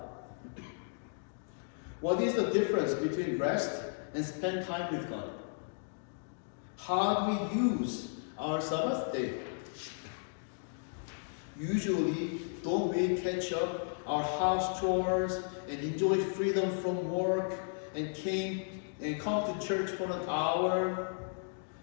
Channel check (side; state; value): right; silent; digital silence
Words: What is the difference between rest and spend time with God? How do we use our Sabbath day? Usually, don't we catch up our house chores and enjoy freedom from work and come to church for an hour?